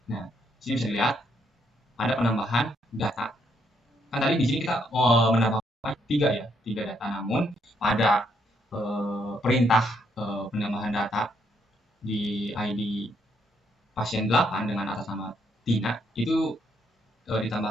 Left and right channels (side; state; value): both; normal; correlation 0.74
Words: Nah, di sini bisa dilihat ada penambahan data. Kan tadi di sini kita menambahkan 3 data, namun pada perintah penambahan data di ID pasien 8 dengan atas nama Tina itu